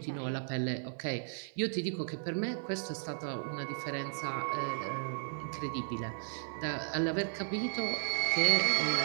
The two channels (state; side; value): silent; left; 55 dB below the other